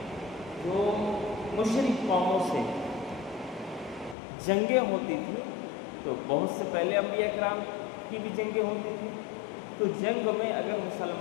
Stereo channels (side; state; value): right; drops out; at 4.2 s